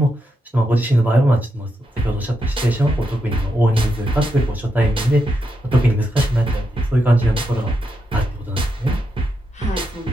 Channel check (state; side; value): normal; both; correlation 0.84